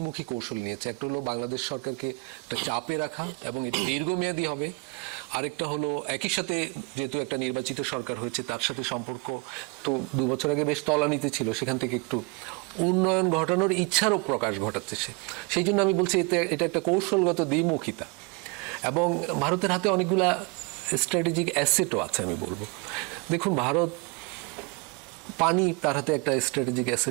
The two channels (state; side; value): quieter; left; 31.0 dB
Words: কৌশল নিয়েছে। একটা হলো বাংলাদেশ সরকারকে একটা চাপে রাখা, এবং এটা দীর্ঘমেয়াদী হবে। আরেকটা হলো একই সাথে যেহেতু একটা নির্বাচিত সরকার হয়েছে, তার সাথে সম্পর্ক তো 2 বছর আগে বেশ তলানিতে ছিল, সেখান থেকে একটু উন্নয়ন ঘটানোর ইচ্ছারও প্রকাশ ঘটাচ্ছে সে। সেই জন্য আমি বলছি এটা একটা কৌশলগত দ্বিমুখিতা। এবং ভারতের হাতে অনেকগুলা স্ট্র্যাটেজিক অ্যাসেটও আছে আমি বলবো। দেখুন, ভারত পানি তার হাতে একটা স্ট্র্যাটেজিক